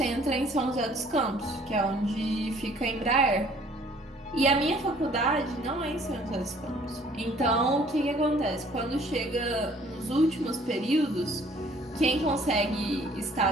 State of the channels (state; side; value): normal; both; correlation 0.57